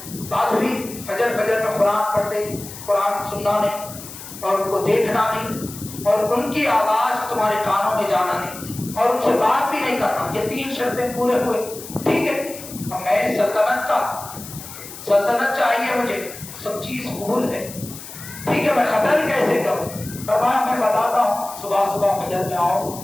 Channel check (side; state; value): left; noise; hiss, 13 dB below the sound